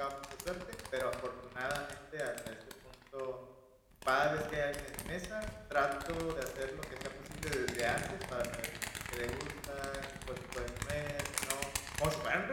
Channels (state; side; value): identical; both; correlation 1.00